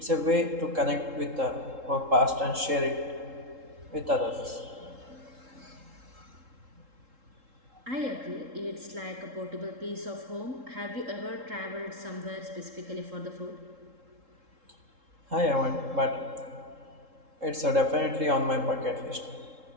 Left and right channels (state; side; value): late; left; 3.7 ms